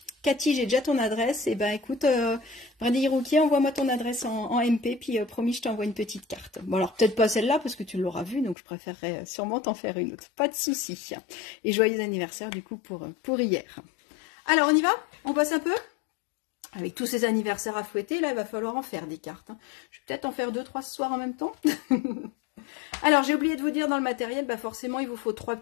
Cathy, j'ai déjà ton adresse. Et ben écoute, Brindille Rouquier, envoie-moi ton adresse en MP, puis promis, je t'envoie une petite carte. Bon alors peut-être pas celle-là parce que tu l'auras vue, donc je préférerais sûrement t'en faire une autre. Pas de souci. Et joyeux anniversaire du coup pour hier. Alors on y va? On passe un peu? Avec tous ces anniversaires à fouetter, là il va falloir en faire des cartes. Je vais peut-être en faire 2-3 ce soir en même temps. Alors, j'ai oublié de vous dire dans le matériel, bah forcément, il vous faut 3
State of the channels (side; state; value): right; drops out; at 8.6 s